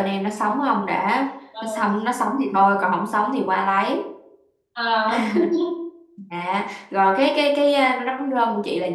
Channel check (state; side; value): identical; both; correlation 1.00